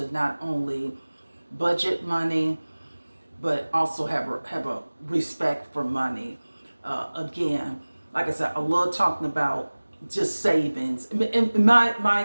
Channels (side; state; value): both; inverted; correlation -1.00